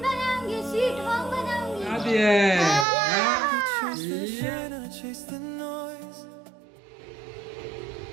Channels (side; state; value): left; drops out; at 2.9 s